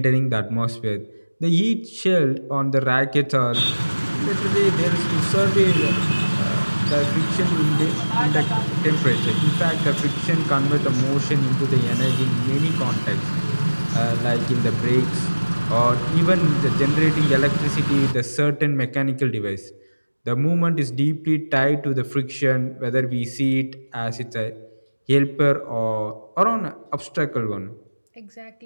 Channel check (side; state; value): both; inverted; correlation -1.00